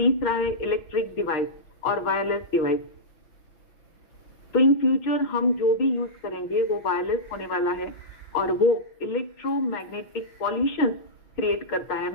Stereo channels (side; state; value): right; late; 6.5 ms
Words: है इलेक्ट्रिक डिवाइस और वायरलेस डिवाइस। तो इन फ्यूचर हम जो भी यूज करेंगे वो वायरलेस होने वाला है और वो इलेक्ट्रोमैग्नेटिक पॉल्यूशन क्रिएट करता है,